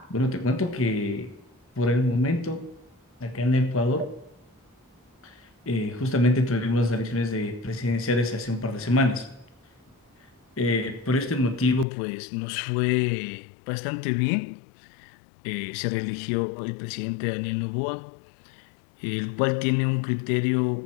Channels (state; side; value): drops out; right; at 11.9 s